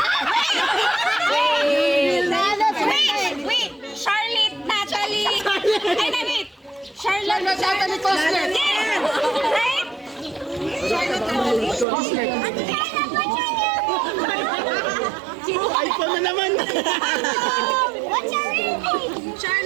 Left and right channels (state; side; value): drops out; left; at 11.9 s